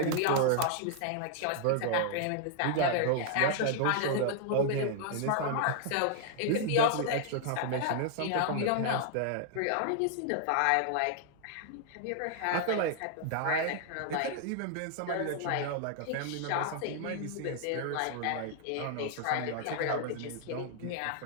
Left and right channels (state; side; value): different; both; correlation -0.01